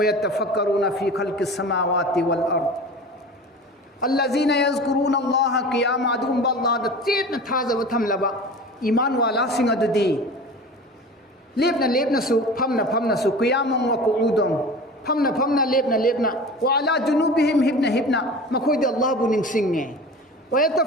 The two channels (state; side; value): normal; both; correlation 0.36